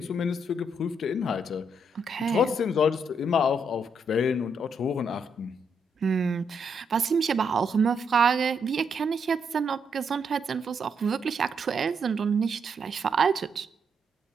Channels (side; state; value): both; normal; correlation 0.77